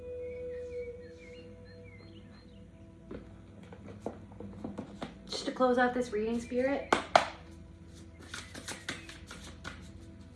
Just to close out this reading, Spirit.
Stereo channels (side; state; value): both; identical; correlation 1.00